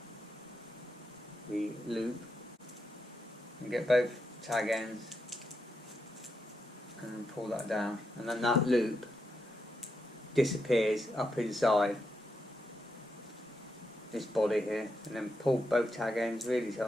the loop and get both tag ends and then pull that down, and then that loop disappears up inside this body here, and then pull both tag ends really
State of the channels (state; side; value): normal; both; correlation 0.84